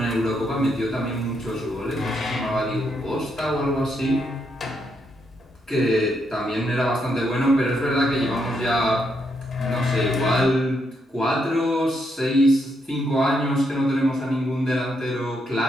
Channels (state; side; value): normal; both; correlation 0.78